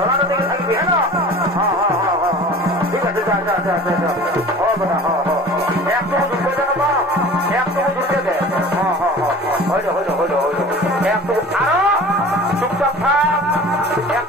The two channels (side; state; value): both; normal; correlation 0.41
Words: দেখে থাকবি, হ্যাঁ ঠিক আছে, একটু ঢুকে দেন বা একটু ঢুকে দে, হইল হইল হইল হইল, একটু আরো চুপচাপ থাক,